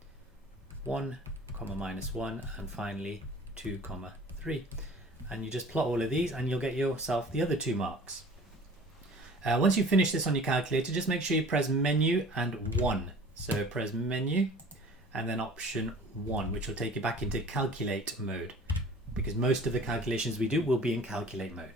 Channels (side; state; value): both; normal; correlation 0.46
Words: 1, -1, and finally 2, 3. And you just plot all of these and you'll get yourself the other 2 marks. Once you finish this on your calculator, just make sure you press menu and 1. So press menu and then option 1, which will take you back into calculate mode, because most of the calculations we do will be in calculate